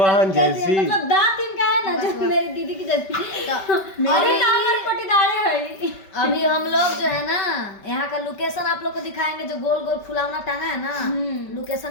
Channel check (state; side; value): late; right; 5.2 ms